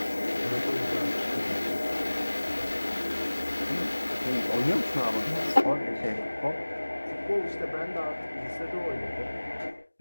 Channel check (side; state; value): both; inverted; correlation -1.00